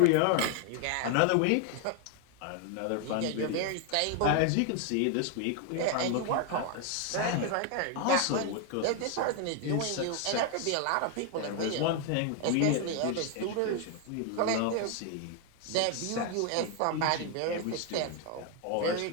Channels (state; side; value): different; both; correlation 0.01